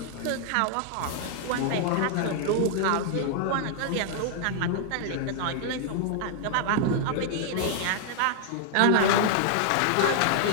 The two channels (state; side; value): different; both; correlation 0.00